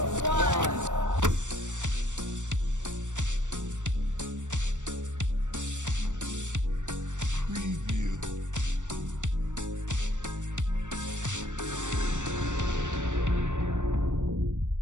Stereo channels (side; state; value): left; late; 0.85 ms